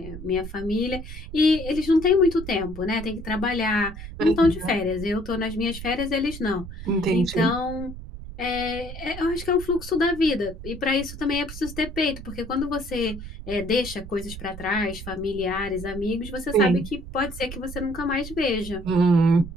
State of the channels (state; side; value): noise; right; rumble, 11 dB below the sound